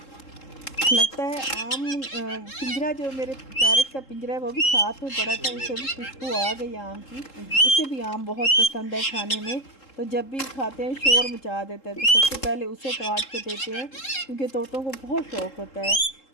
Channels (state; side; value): late; right; 3.7 ms